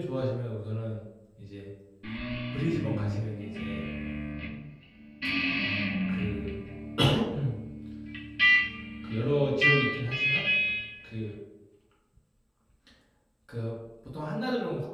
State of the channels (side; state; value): both; identical; correlation 1.00